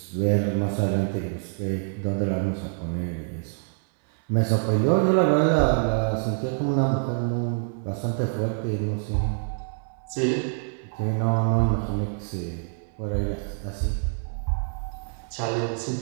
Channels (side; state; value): left; silent; 61 dB below the other